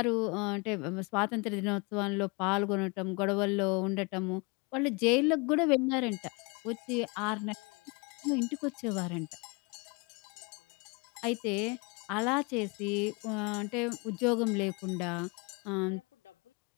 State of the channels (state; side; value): quieter; right; 29.9 dB